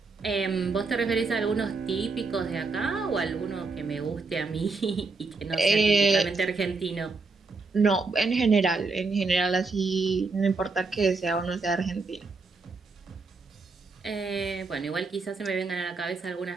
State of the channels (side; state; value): left; quieter; 4.0 dB